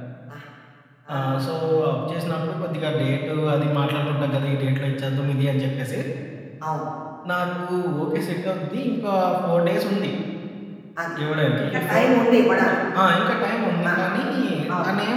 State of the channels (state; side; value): identical; both; correlation 1.00